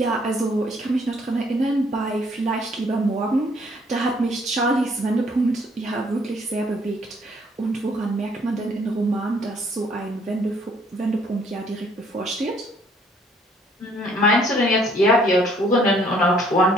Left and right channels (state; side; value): normal; both; correlation 0.63